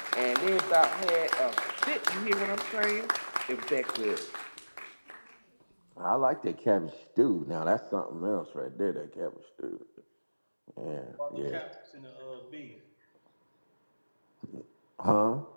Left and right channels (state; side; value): inverted; both; correlation -1.00